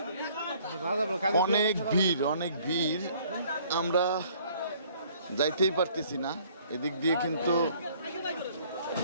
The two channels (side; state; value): both; inverted; correlation -0.59